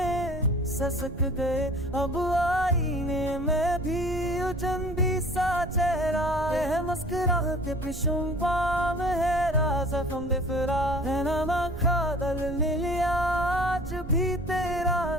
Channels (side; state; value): right; noise; rumble, 10 dB below the sound